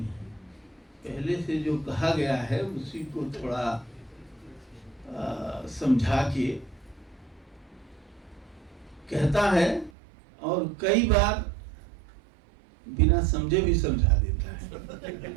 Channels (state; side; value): drops out; left; at 9.9 s